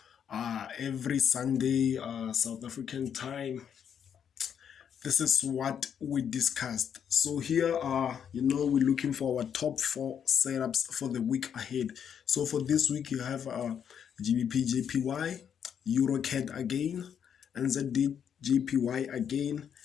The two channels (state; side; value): quieter; right; 8.2 dB